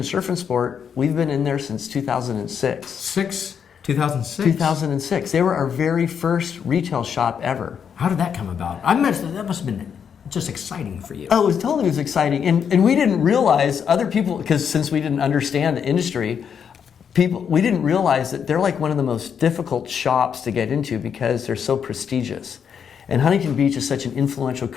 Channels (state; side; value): quieter; right; 7.5 dB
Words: Surf and Sport. We've been in there since 2006. 2006? 2006. They were our very first retail shop ever. How did that come about? That must have been just exciting for you. Oh, it was exciting. And we didn't realize other people, because since we didn't understand the industry, we didn't realize that they're like one of the most difficult shops to get into because they're so prestigious. And Huntington Beach is such an influential